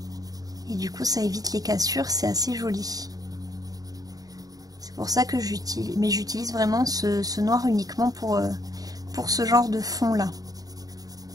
Et du coup ça évite les cassures, c'est assez joli. C'est pour ça que j'utilise vraiment ce noir uniquement pour ce genre de fond là.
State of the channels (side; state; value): left; late; 0.18 ms